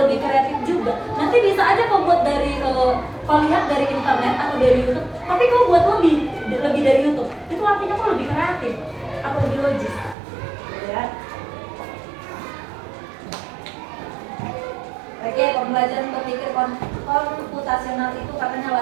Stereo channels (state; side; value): drops out; left; at 10.2 s